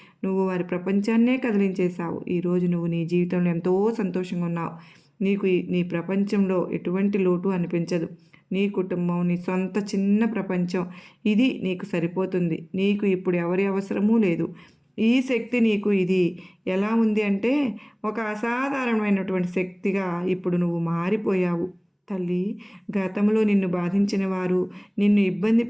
నువ్వు వారి ప్రపంచాన్నే కదిలించేశావు. ఈరోజు నువ్వు నీ జీవితంలో ఎంతో సంతోషంగా ఉన్నావు. నీకు నీ ప్రపంచంలో ఎటువంటి లోటు అనిపించదు. నీ కుటుంబం, నీ సొంత చిన్న ప్రపంచం, ఇది నీకు సరిపోతుంది. నీకు ఇప్పుడు ఎవరి అవసరమూ లేదు. ఈ శక్తి నీకు ఇది ఎలా ఉంది అంటే ఒక అసాధారణమైనటువంటి శక్తిగా ఇప్పుడు నువ్వు మారిపోయావు. తల్లి, గతంలో నిన్ను బాధించిన వారు, నిన్ను ఇబ్బంది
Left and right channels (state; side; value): identical; both; correlation 1.00